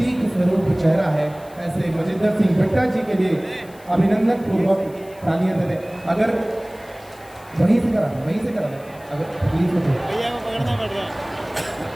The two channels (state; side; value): noise; left; hiss, 25 dB below the sound